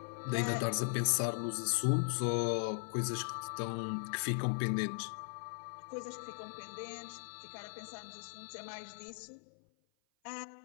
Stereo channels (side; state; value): right; silent; 52 dB below the other